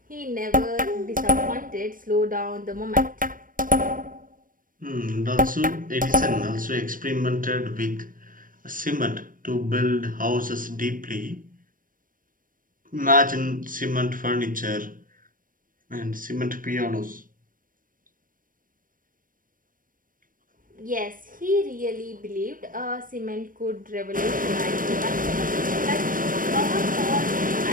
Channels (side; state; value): left; late; 0.40 ms